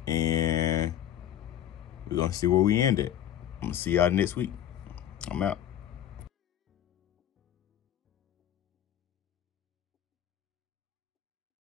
And we're going to see where we end it. I'm going to see y'all next week. I'm out.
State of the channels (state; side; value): quieter; right; 11.0 dB